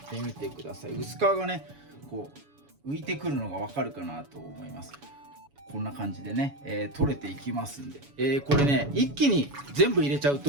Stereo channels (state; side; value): late; left; 7.0 ms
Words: てみてください。薄皮がねこう浮いてくるのがわかるかなと思います。こんな感じでね、取れていきますんで、これね一気に全部入れちゃう